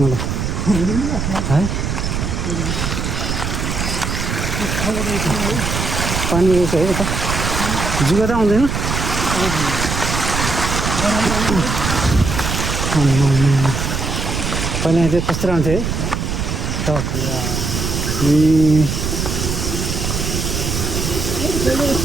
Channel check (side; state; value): right; noise; rumble, 2 dB below the sound